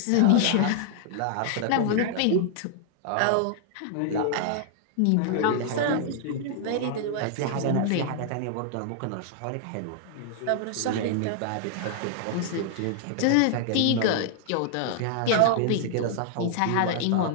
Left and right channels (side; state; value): both; different; correlation 0.00